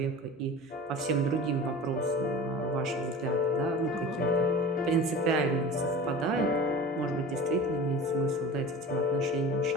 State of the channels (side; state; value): both; normal; correlation 0.36